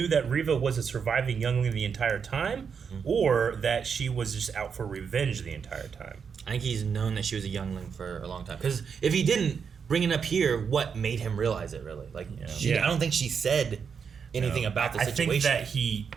that Riva was a surviving youngling the entire time, or that she was just out for revenge the entire time? I think he's known that she was a youngling for a long time. Because if he didn't bring it up here, what made him realize it, really? Like, I don't think she said anything about the situation. I think that he,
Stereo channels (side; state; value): left; quieter; 6.4 dB